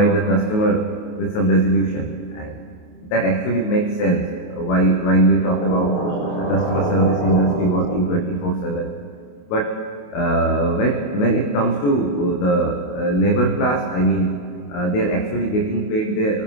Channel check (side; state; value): right; late; 28 ms